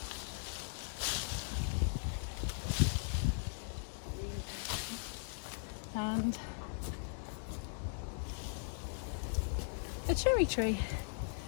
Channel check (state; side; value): silent; right; digital silence